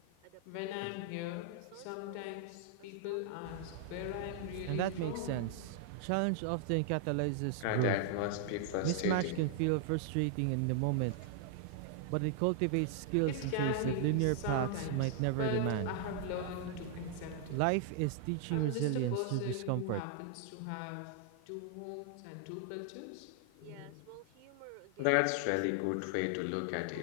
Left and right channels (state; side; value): different; both; correlation 0.00